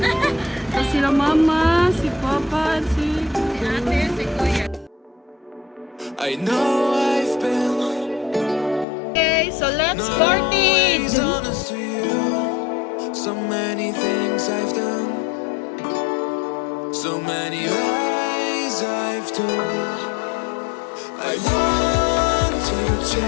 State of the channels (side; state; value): right; drops out; at 8.8 s